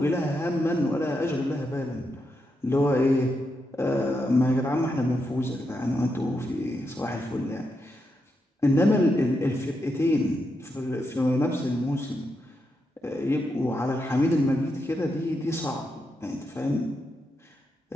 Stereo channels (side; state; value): both; normal; correlation 0.84